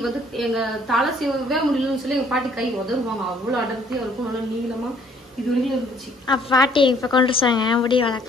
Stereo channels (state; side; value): normal; both; correlation 0.61